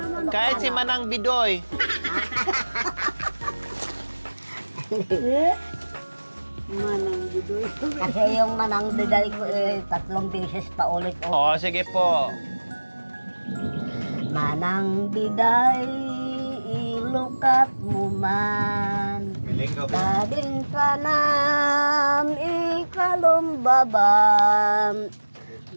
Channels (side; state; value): both; inverted; correlation -1.00